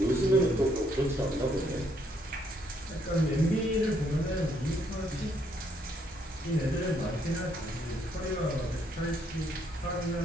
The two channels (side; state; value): both; normal; correlation 0.70